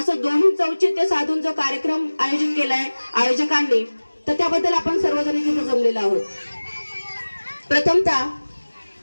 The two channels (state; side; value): inverted; both; correlation -1.00